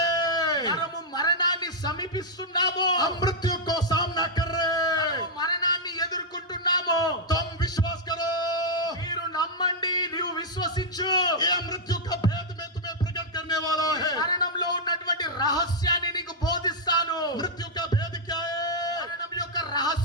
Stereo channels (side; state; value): both; normal; correlation -0.04